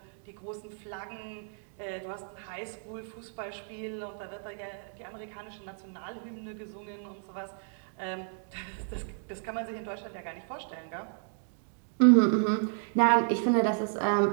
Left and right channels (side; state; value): left; silent; 56 dB below the other